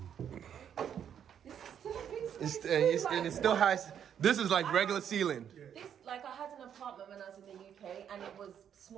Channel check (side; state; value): left; quieter; 8.8 dB